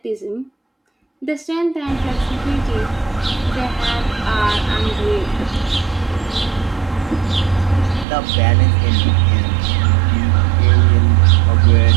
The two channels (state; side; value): drops out; left; at 8.1 s